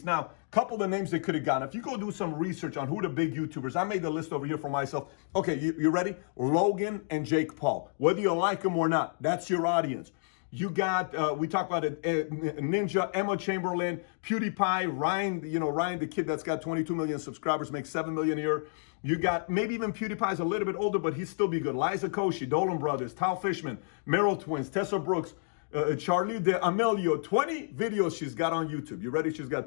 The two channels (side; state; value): right; silent; digital silence